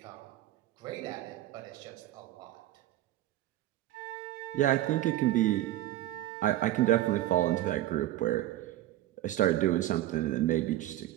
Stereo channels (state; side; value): quieter; left; 14.4 dB